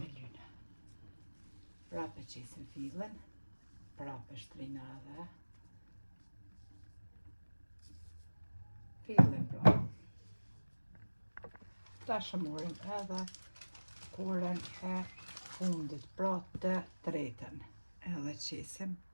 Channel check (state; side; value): inverted; both; correlation -1.00